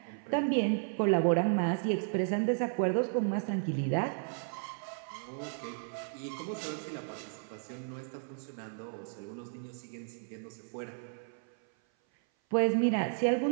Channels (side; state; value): left; silent; 55 dB below the other